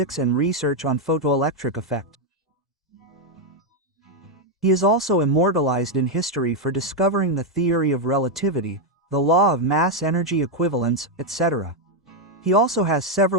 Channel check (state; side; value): normal; both; correlation 0.02